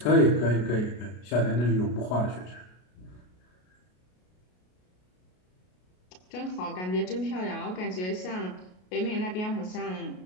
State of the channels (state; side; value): late; right; 33 ms